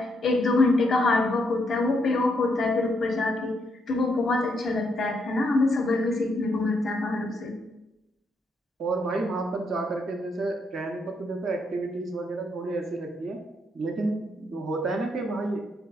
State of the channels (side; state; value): both; normal; correlation 0.76